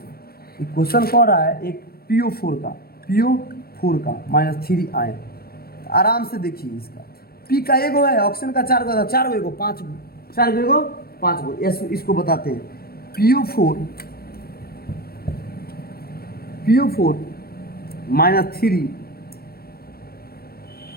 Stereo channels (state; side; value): late; right; 0.44 ms